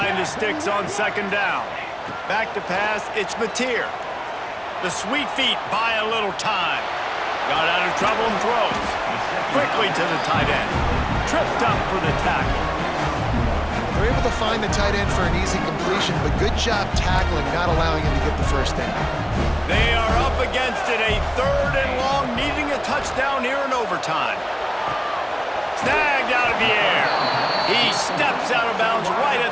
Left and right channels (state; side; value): identical; both; correlation 1.00